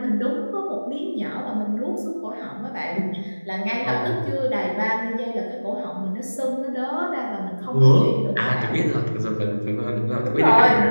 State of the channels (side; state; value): both; inverted; correlation -1.00